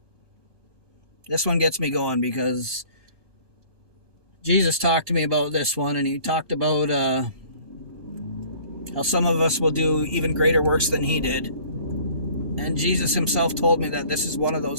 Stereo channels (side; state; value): right; late; 1.2 ms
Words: This one gets me going because Jesus talked to me about this one, and he talked about how some of us will do even greater works than he did. And Jesus himself told me that this is one of